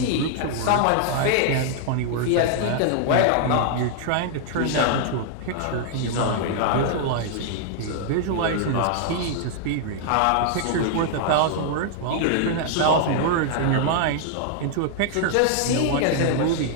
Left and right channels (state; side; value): different; both; correlation 0.00